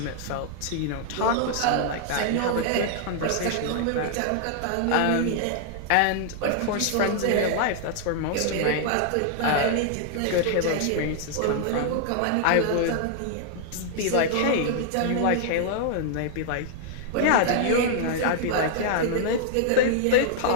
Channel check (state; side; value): different; both; correlation -0.01